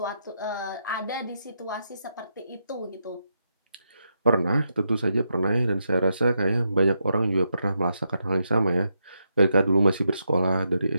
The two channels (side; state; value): both; inverted; correlation -0.82